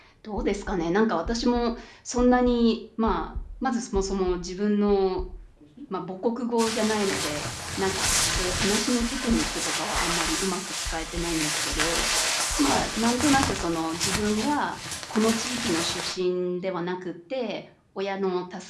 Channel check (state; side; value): identical; both; correlation 1.00